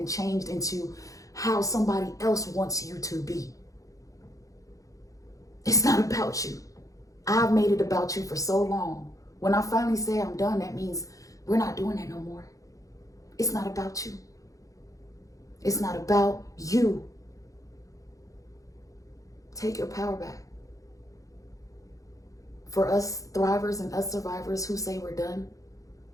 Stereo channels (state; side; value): late; right; 0.16 ms